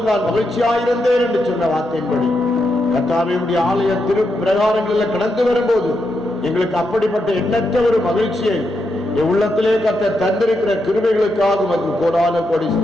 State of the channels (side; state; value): both; normal; correlation 0.83